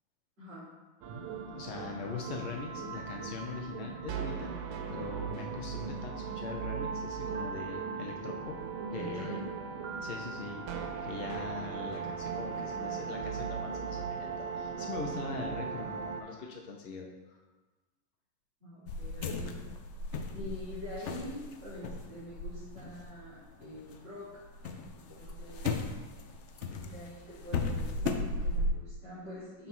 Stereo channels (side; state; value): left; late; 11 ms